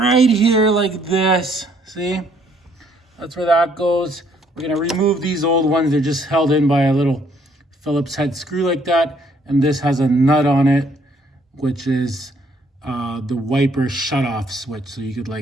here like this. See? That's where that goes. We're gonna remove these old ones. They're just held in by a little Phillips head screw like that. And this has a nut on it, which is the wiper shut-off switch. So you could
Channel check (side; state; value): both; normal; correlation 0.66